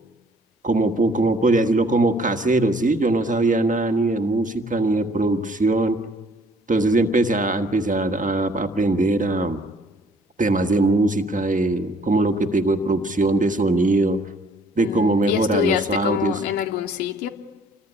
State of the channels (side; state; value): both; normal; correlation 0.59